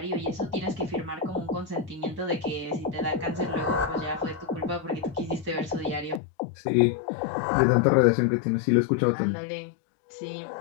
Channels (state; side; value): drops out; right; at 6.2 s